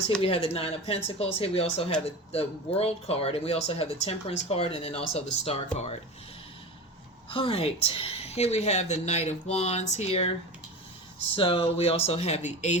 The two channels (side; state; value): both; normal; correlation 0.29